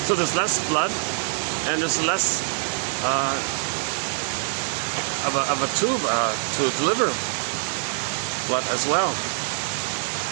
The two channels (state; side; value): silent; left; digital silence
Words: So there's less blood and there's less of a tube to deliver blood as well.